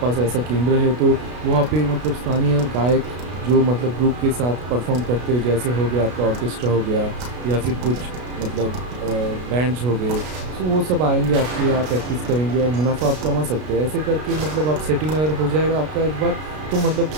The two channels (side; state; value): left; late; 33 ms